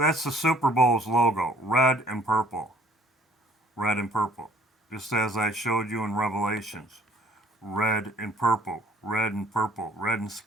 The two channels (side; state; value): both; normal; correlation 0.58